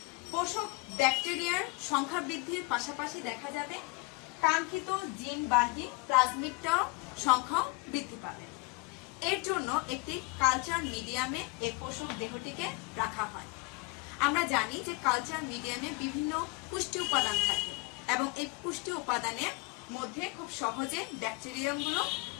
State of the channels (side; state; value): right; quieter; 27.4 dB